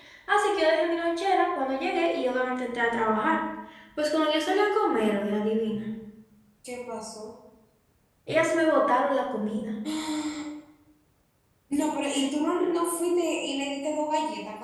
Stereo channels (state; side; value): identical; both; correlation 1.00